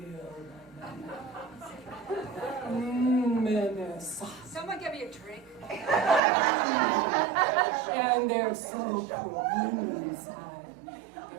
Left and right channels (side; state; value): left; drops out; at 6.2 s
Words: bananas. Someone give me a drink. And they're so cool inside.